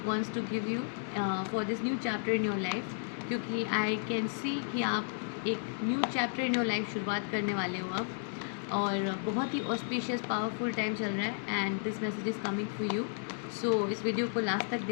wants to give you for this new chapter in your life? क्योंकि I can see कि आप एक new chapter in your life शुरुआत करने वाले हो अब, और बहुत ही ऑस्पिशियस पावरफुल टाइम चल रहा है and this message is coming for you. So इस वीडियो को लास्ट तक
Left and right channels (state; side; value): silent; right; digital silence